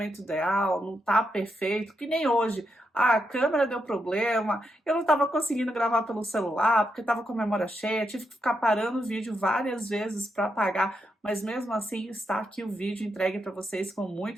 ideal, não tá perfeito, que nem hoje. A câmera deu problema, eu não estava conseguindo gravar pelo celular, porque estava com a memória cheia, tive que ficar parando o vídeo várias vezes para apagar, mas mesmo assim está aqui o vídeo entregue para vocês com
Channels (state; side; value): normal; both; correlation 0.83